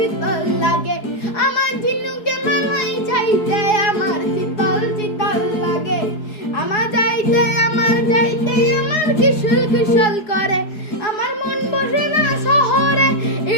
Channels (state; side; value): late; right; 4.7 ms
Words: শীতল লাগে, আমার ঝিনুকে মালাই চাইতে আমার শীতল শীতল লাগে। আমার যাইতে আমার কিশোর কিশোর করে, আমার মন বসে না শহরে,